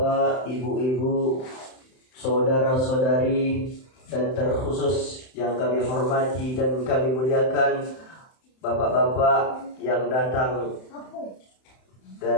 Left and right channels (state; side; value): late; right; 31 ms